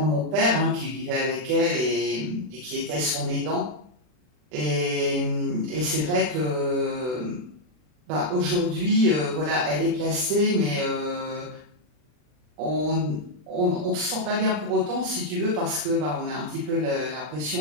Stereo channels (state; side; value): late; left; 40 ms